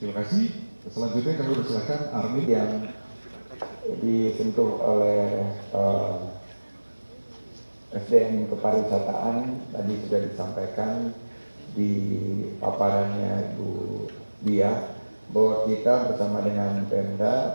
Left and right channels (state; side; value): inverted; both; correlation -1.00